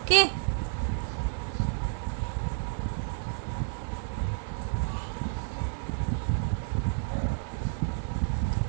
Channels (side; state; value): left; silent; digital silence